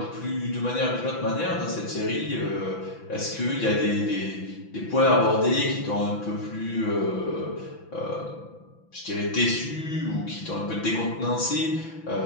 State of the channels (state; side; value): late; right; 6.0 ms